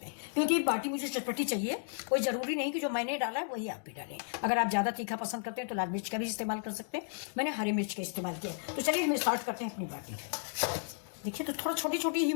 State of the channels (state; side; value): silent; right; digital silence